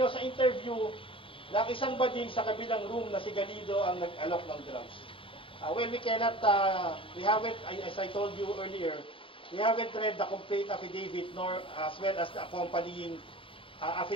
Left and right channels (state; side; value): late; right; 0.25 ms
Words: sa interview ng isang bading sa kabilang room na si Galido ang nag-alok ng drugs. Well, we cannot, we haven't, as I told you earlier, we haven't read the complete affidavit nor as well as the accompanying